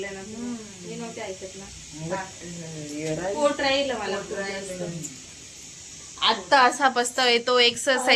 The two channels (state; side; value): identical; both; correlation 1.00